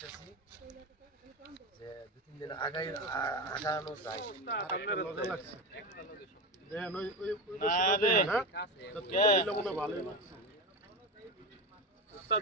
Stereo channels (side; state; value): both; normal; correlation 0.20